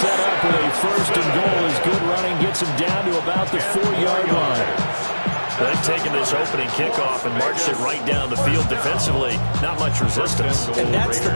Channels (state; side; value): inverted; both; correlation -1.00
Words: up with a 1st and goal as good running gets him down to about the 4-yard line. They've taken this opening kickoff and marched it right down the field defensively. Not much resistance. And that's the